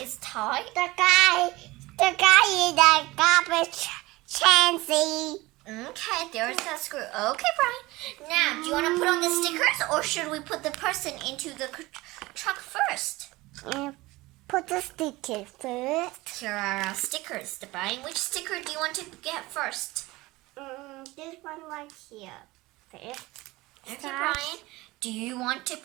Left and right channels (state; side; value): quieter; left; 20.4 dB